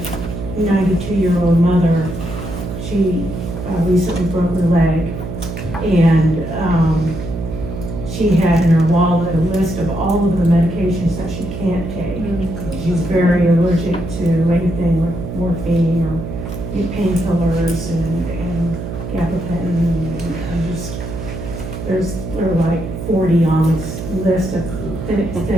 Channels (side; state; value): right; noise; hum, 7 dB below the sound